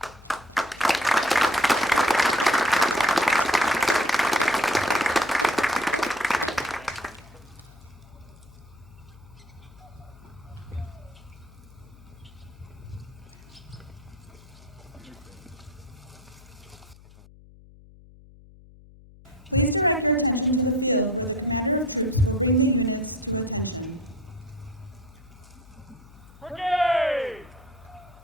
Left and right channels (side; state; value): left; noise; hum, 22 dB below the sound